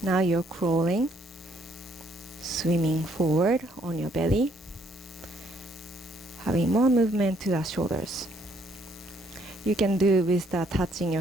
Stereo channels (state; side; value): normal; both; correlation 0.68